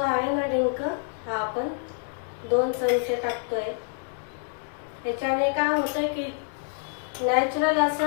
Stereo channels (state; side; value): silent; right; digital silence